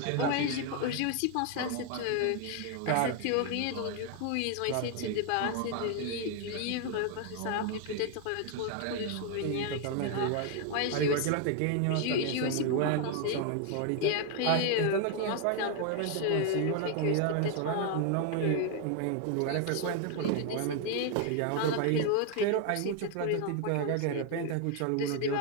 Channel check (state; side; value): different; both; correlation 0.01